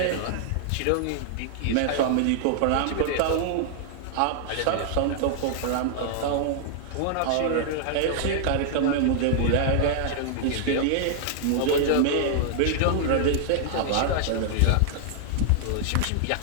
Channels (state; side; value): different; both; correlation -0.01